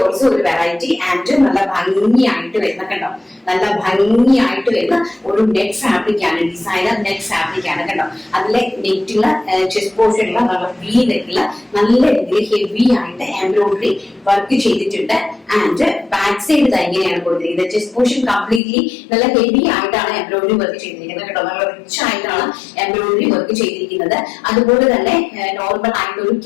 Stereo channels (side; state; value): right; drops out; at 18.6 s